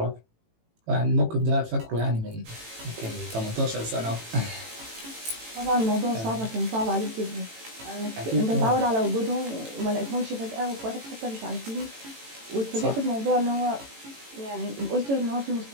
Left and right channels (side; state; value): left; late; 18 ms